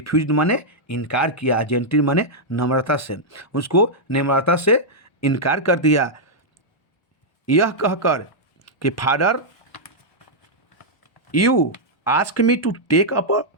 माने इनकार किया, जेंटली माने नम्रता से, उसको नम्रता से इनकार कर दिया, यह कहकर कि father you ask me to take up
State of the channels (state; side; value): late; right; 1.1 ms